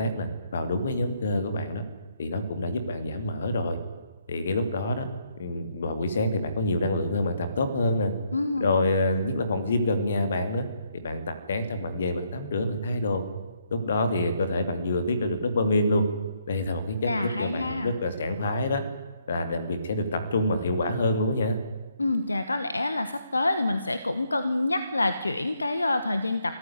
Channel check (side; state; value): both; inverted; correlation -0.73